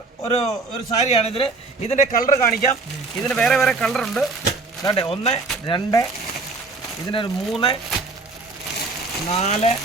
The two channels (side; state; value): left; quieter; 3.7 dB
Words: ഒരു സാരിയാണ് ഇതില്. ഇതിന്റെ കളർ കാണിക്കാം. ഇതിന് വേറെ കളർ ഉണ്ട്. ദാണ്ടെ 1 2 ഇതിനൊരു 3 4